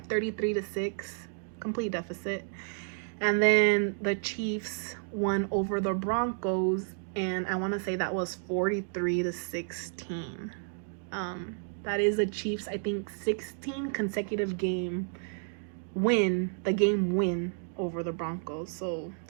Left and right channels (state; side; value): silent; left; digital silence